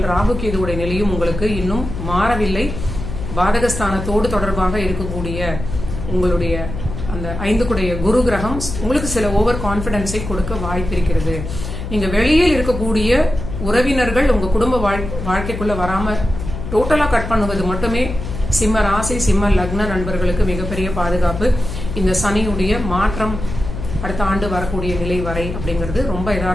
ராகு கேதுவுடைய நிலையும் உங்களுக்கு இன்னும் மாறவில்லை. பாதகஸ்தானத்தோடு தொடர்பாக இருக்கக்கூடிய உங்களுடைய அந்த 5 குரு கிரகம் உங்களுக்கு சில ஓவர் கான்பிடன்ஸை கொடுக்க வாய்ப்பு இருக்கிறது. நீங்க வெளியில் இருக்கக்கூடிய உறவினர்கள் உங்க குடும்ப வாழ்க்கைக்குள்ள வராம டோட்டலா கட் பண்ணுவது மட்டுமே சிம்ம ராசி சிம்ம லக்ன நண்பர்களுக்கு மிகப்பெரிய பாதுகாப்பு. இந்த சனியுடைய மாற்றம் அடுத்த ஆண்டு வரக்கூடிய நிலை வரை அப்படிங்கிறது ரொம்ப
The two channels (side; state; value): left; noise; hum, 7 dB below the sound